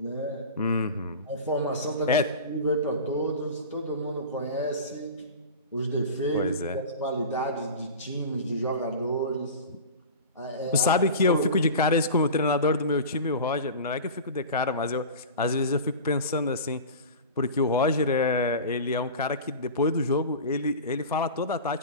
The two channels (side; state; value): both; inverted; correlation -0.32